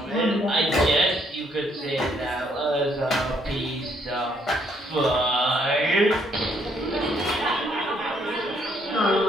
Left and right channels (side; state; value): both; normal; correlation 0.70